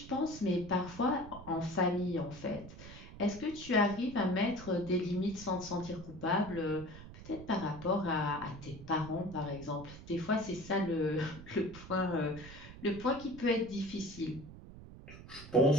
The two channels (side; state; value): right; noise; rumble, 15 dB below the sound